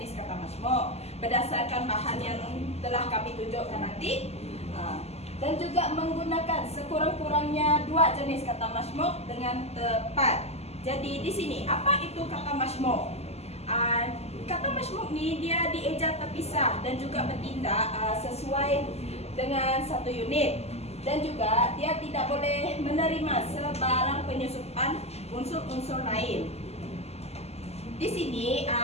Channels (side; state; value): right; late; 0.30 ms